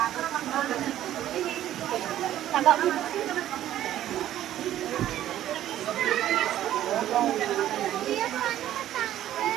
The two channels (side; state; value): left; quieter; 12.5 dB